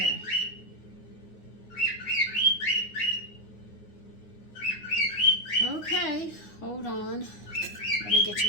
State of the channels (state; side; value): late; right; 9.5 ms